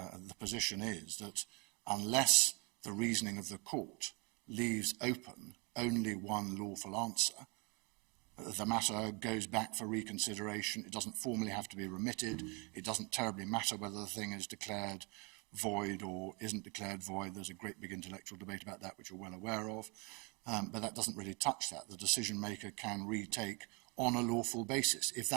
position is that unless the reasoning of the court leaves open only one lawful answer, the matter goes back for reconsideration. It doesn't formally have to be remitted. It doesn't terribly matter whether the thing is declared void or isn't declared void. There's a great big intellectual debate about that, which you're well aware of. But that doesn't really touch that. The decision maker can retake on a lawful basis if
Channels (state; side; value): quieter; left; 31.0 dB